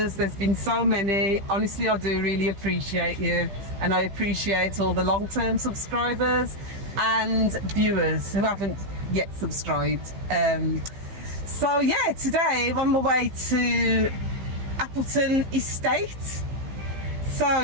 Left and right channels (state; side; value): late; left; 15 ms